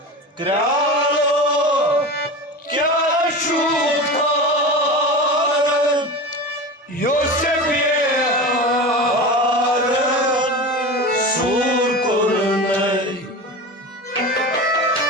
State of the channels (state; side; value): normal; both; correlation 0.29